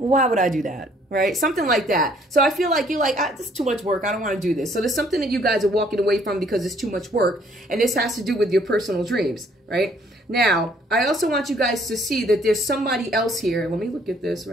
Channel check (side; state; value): both; normal; correlation 0.63